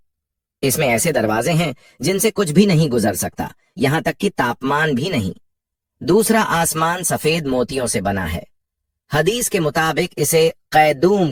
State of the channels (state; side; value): identical; both; correlation 1.00